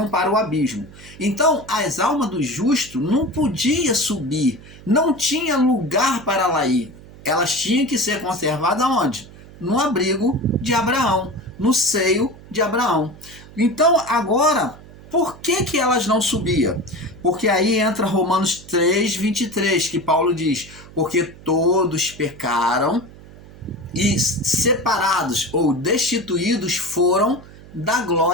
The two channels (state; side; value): noise; right; hum, 20 dB below the sound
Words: para o abismo. Então, as almas do justo não podiam subir, não tinha lugar para lá ir. Elas tinham que ser conservadas onde? No abrigo de Abraão, no seio de Abraão. Então, agora, por que elas não subiam? Porque aí entra Romanos 3, 23, que Paulo diz, porque todos pecaram e separados ou destituídos foram da